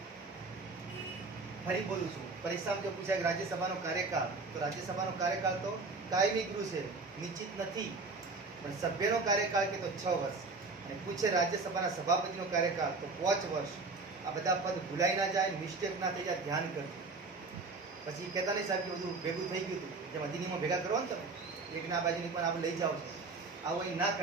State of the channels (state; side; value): quieter; left; 3.8 dB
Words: ફરી બોલું છું, પરીક્ષામાં જો પૂછાય કે રાજ્યસભાનો કાર્યકાળ, તો રાજ્યસભાનો કાર્યકાળ તો કાયમી ગૃહ છે, નિશ્ચિત નથી. પણ સભ્યનો કાર્યકાળ કે તો 6 વર્ષ, અને પૂછે રાજ્યસભાના સભાપતિનો કાર્યકાળ તો 5 વર્ષ. આ બધા પદ ભૂલાઈ ના જાય, મિસ્ટેક ના થઈ જાય, ધ્યાન કરજો. પછી કહેતા નહીં સાહેબ કે બધું ભેગું થઈ ગયું હતું, જેમ અધિનિયમો ભેગા કરો ને તમે, એકના બાજુની પણ આપણે લઈ જાઓ છો, આવું અહીં ના